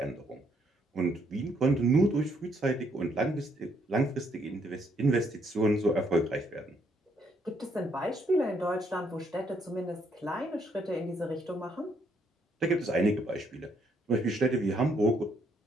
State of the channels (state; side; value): normal; both; correlation 0.71